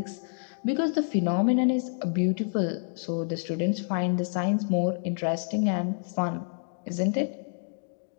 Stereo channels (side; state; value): right; silent; digital silence